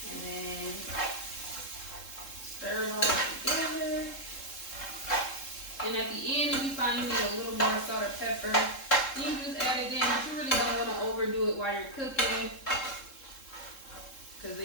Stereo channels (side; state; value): right; late; 3.7 ms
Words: And then stir it all together. And at the end, if you find you need a little more salt or pepper, you can just add it in, but you really don't want to overdo it while you're cooking, because